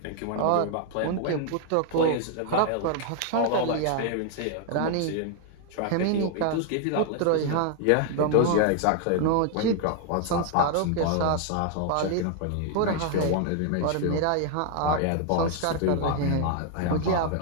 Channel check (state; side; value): different; both; correlation 0.00